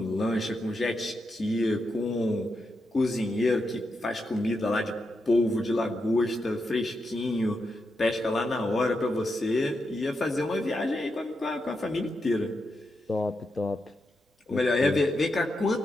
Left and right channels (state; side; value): normal; both; correlation 0.85